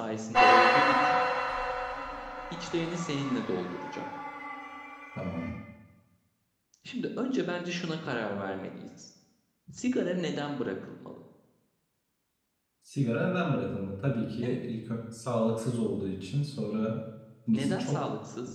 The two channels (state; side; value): identical; both; correlation 1.00